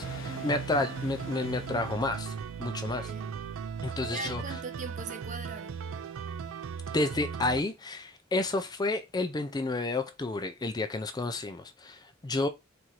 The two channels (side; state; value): both; normal; correlation 0.45